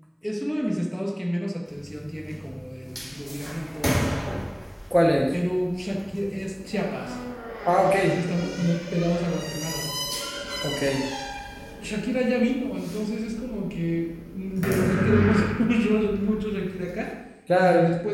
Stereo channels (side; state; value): both; identical; correlation 1.00